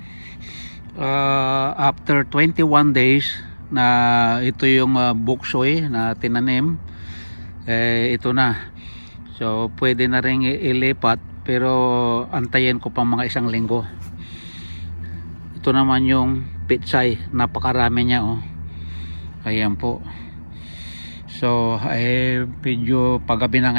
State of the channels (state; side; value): inverted; both; correlation -1.00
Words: After 21 days na ito yung bok choy na tinanim, ito na. So pwede na rin ilipat, pero antayin ko pa mga isang linggo. Ito naman yung pitsay, napakarami niya, oh. Ayan po. So medyo paggabi na